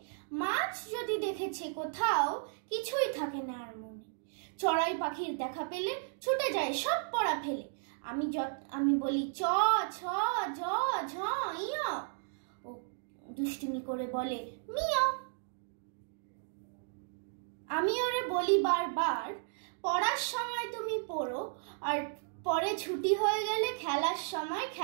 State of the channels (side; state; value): left; silent; digital silence